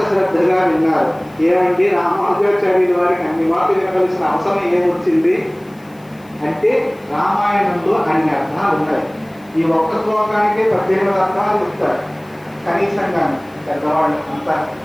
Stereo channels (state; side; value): noise; left; hiss, 30 dB below the sound